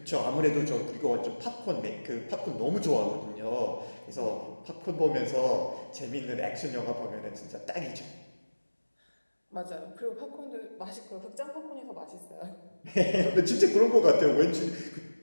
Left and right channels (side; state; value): both; inverted; correlation -1.00